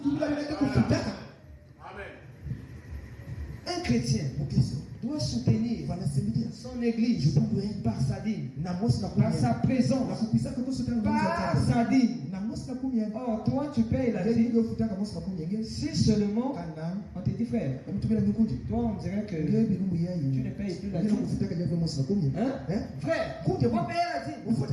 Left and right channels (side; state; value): both; identical; correlation 1.00